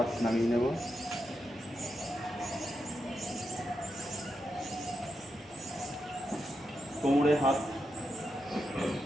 নামিয়ে নেব। কোমরে হাত,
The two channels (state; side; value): normal; both; correlation 0.86